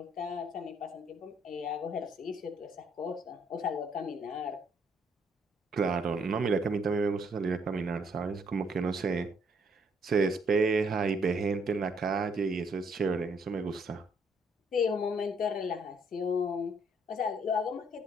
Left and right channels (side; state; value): both; normal; correlation 0.68